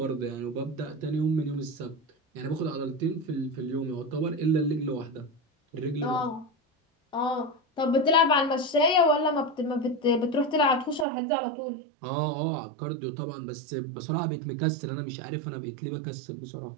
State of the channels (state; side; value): drops out; left; at 11.1 s